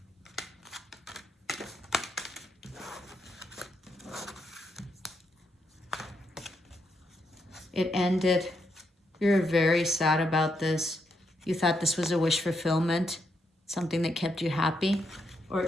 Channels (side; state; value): both; normal; correlation 0.79